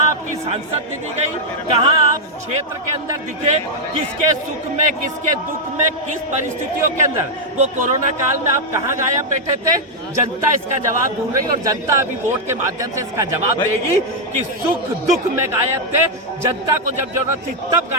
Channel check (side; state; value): both; normal; correlation -0.03